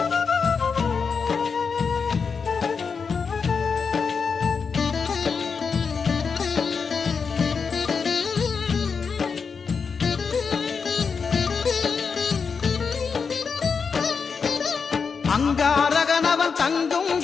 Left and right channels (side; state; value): right; quieter; 5.6 dB